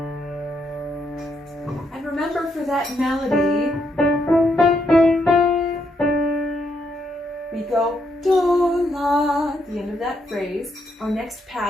And remember for that melody, we go do, la, at the end of that phrase. Our next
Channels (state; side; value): normal; both; correlation 0.77